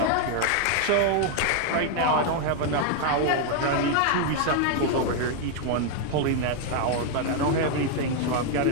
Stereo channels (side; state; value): both; different; correlation 0.00